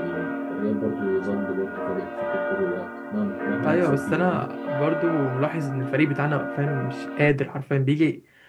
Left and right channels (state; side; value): identical; both; correlation 1.00